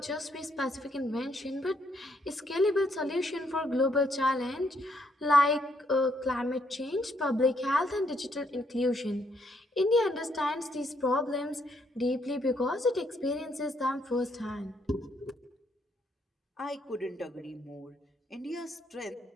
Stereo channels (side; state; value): both; normal; correlation 0.73